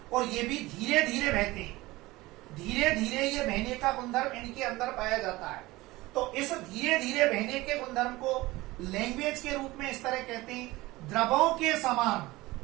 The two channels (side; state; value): left; quieter; 19.7 dB